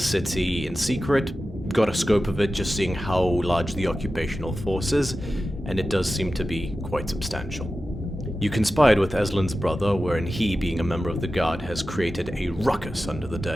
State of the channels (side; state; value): both; normal; correlation 0.93